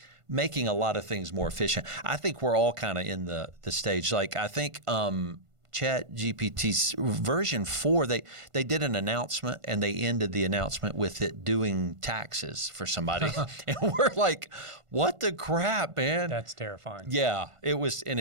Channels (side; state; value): left; late; 1.5 ms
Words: making a lot of things more efficient. I think we're all kind of in the stage. Like I think ChatGPT's version 4, they did an announcement and they ended the announcement with it doing taxes for somebody. And we're like, what the crap, man? That's terrifying. Yeah, it was, and